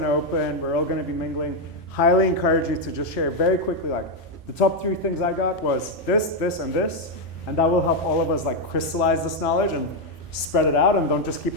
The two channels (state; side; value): normal; both; correlation 0.02